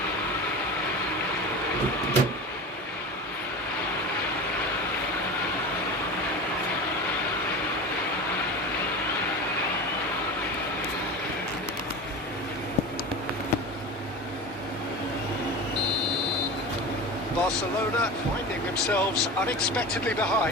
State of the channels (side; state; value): both; normal; correlation 0.30